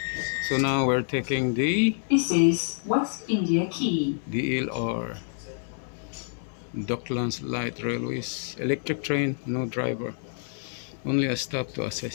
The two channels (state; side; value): silent; right; 58 dB below the other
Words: So now we're taking the This is West India Quay. DLR, Docklands Light Railways, electric train, no driver, only a stop to